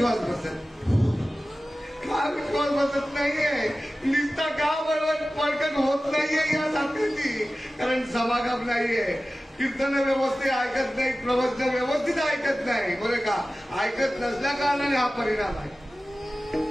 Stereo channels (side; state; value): both; normal; correlation 0.96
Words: बसत? का विश्वास बसत नाहीये? निस्ता का बरोबर पडकन होत नाहीये या साखरेची? कारण समागम नाहीये, कीर्तन व्यवस्थित ऐकत नाही, प्रवचन व्यवस्थित ऐकत नाही. बरं का? ऐकत नसल्या कारणाने हा परिणाम आहे.